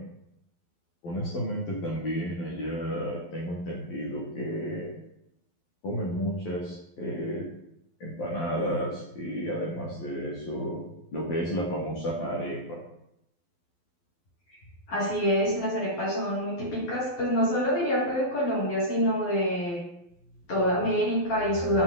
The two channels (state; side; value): late; right; 12 ms